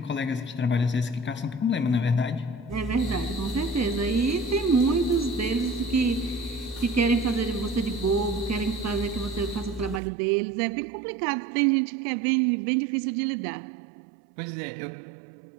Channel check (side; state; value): left; drops out; at 10.0 s